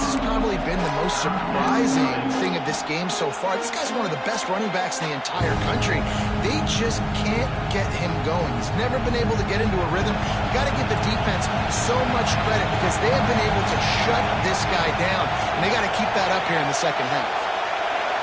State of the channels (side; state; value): both; identical; correlation 1.00